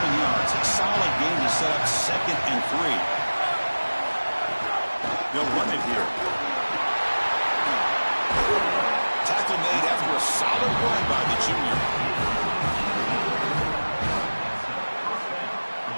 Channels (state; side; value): inverted; both; correlation -1.00